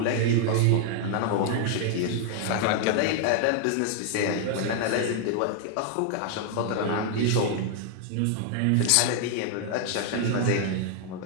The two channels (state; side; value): different; both; correlation 0.00